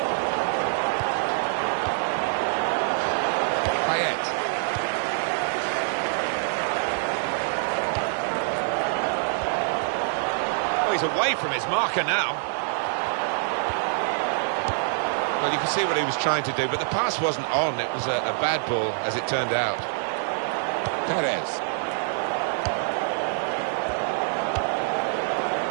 Payet. Oh, he's away from his marker now. Well, you can see what he was trying to do, but the pass wasn't on. It was a bad ball, as it turned out. Perez.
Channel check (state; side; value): silent; left; digital silence